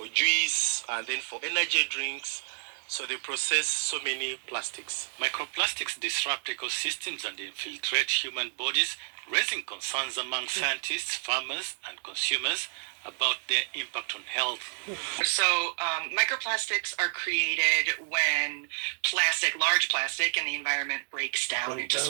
juice, and then for energy drinks. So they process so many plastics. Microplastics disrupt ecosystems and infiltrate human bodies, raising concerns among scientists, farmers, and consumers about their impact on health. So microplastics are created when large plastic in the environment breaks down into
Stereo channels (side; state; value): left; silent; 58 dB below the other